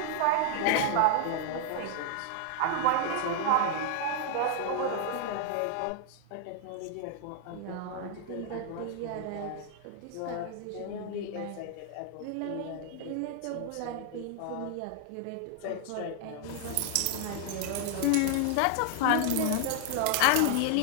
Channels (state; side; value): different; both; correlation 0.00